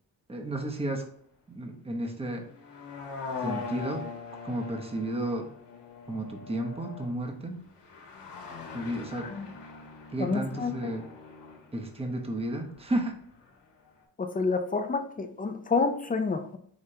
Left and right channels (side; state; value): both; normal; correlation 0.49